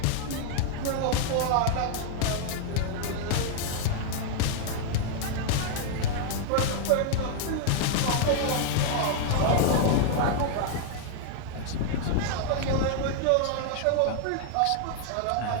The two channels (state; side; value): different; both; correlation 0.00